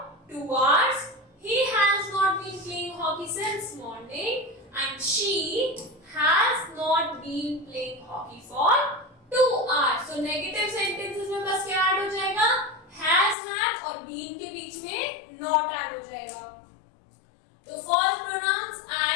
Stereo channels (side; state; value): right; drops out; at 13.4 s